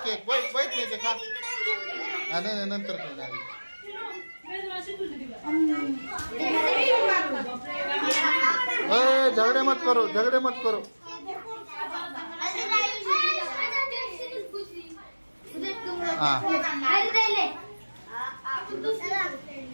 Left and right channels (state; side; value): inverted; both; correlation -1.00